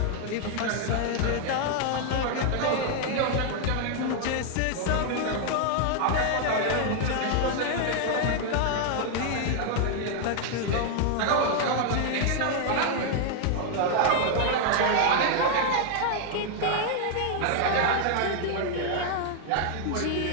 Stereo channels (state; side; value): different; both; correlation 0.00